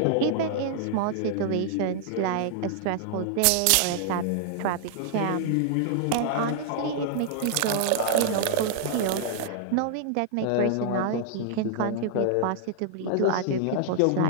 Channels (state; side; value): different; both; correlation -0.01